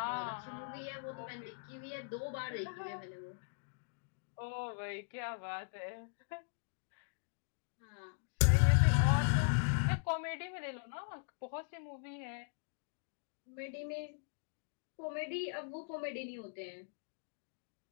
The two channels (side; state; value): right; silent; digital silence